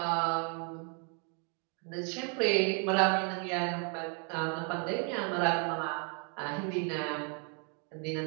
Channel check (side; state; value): left; quieter; 38.6 dB